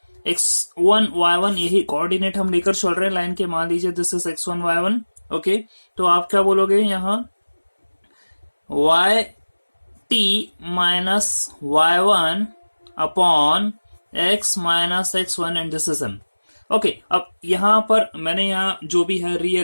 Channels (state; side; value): inverted; both; correlation -1.00